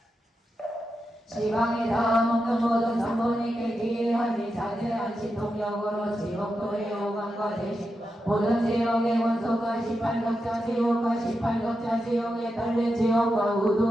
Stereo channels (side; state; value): both; normal; correlation 0.88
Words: 지방에 닿아먹는 모든 삼본이께 기이하니 자제한 신통력으로 지옥도의 오감과 대신 모든 지옥의 원소가 18격자 지옥과 18격자 지옥에 달린 지옥과